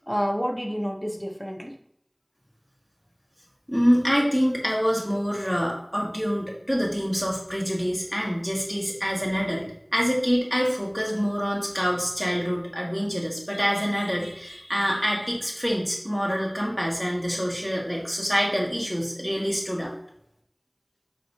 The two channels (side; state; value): both; identical; correlation 1.00